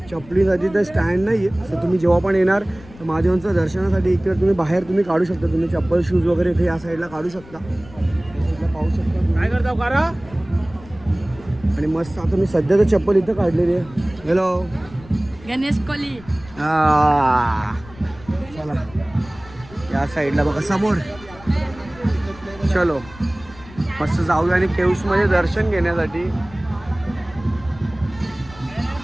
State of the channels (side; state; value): left; noise; rumble, 20 dB below the sound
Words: चपलीसाठी तर स्टँड नाही आहे. सो तुम्ही जेव्हा पण येणार तर महादेवांचं दर्शनासाठी इकडे तुम्ही बाहेर तुम्ही काढू शकता. तुम्ही चप्पल शूज वगैरे इथे या साईडला काढू शकता. या साईडला पाहू शकता काय करता करा. आणि मस्त आता मी सध्या तर चप्पल इथं काढलेली आहे. हॅलो गणेश कोली. चला या साईडला बघा समोर. चलो मस्त जाऊया आणि केव्समध्ये दर्शन घेण्यासाठी.